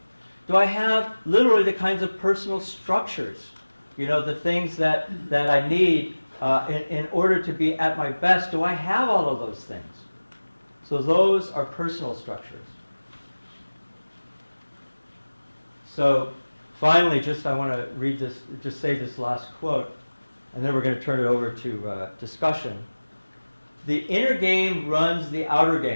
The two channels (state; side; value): inverted; both; correlation -1.00